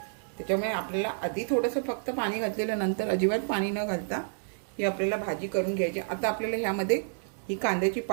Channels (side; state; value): left; silent; 58 dB below the other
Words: त्याच्यामुळे आपल्याला आधी थोडंसं फक्त पाणी घातलेलं, नंतर अजिबात पाणी न घालता ही आपल्याला भाजी करून घ्यायची. आता आपल्याला ह्यामध्ये ही कांद्याची